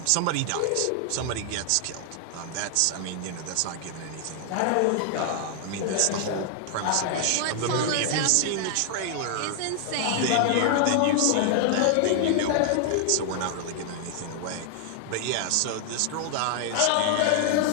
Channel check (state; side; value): different; both; correlation 0.00